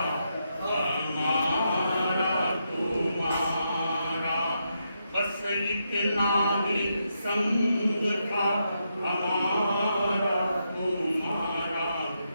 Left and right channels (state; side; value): inverted; both; correlation -0.82